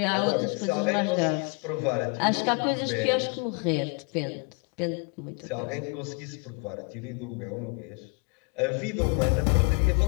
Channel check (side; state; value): right; quieter; 33.5 dB